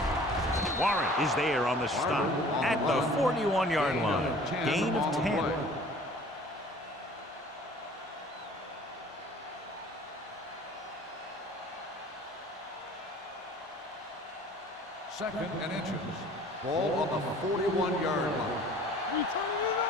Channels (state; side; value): normal; both; correlation 0.49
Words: Warren is there on the stop at the 41-yard line. Gain of 10. Second and inches. Ball on the 41-yard line. We turning it